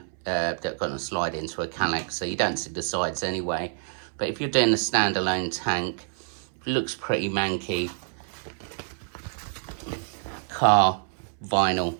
that are going to slide into a calyx, so you don't see the sides anyway. But if you're doing a standalone tank, it looks pretty manky. Car vinyl,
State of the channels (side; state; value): left; silent; 60 dB below the other